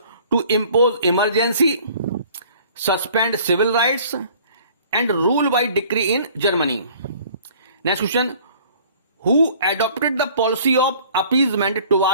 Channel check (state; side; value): inverted; both; correlation -0.53